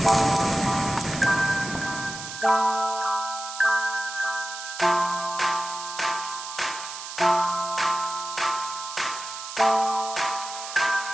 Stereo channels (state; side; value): noise; right; hiss, 9 dB below the sound